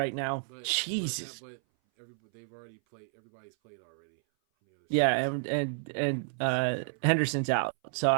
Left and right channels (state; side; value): silent; left; 57 dB below the other